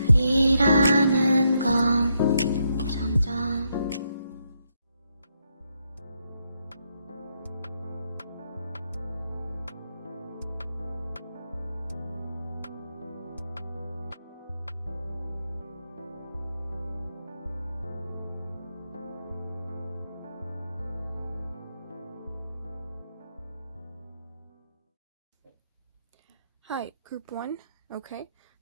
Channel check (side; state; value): both; inverted; correlation -0.79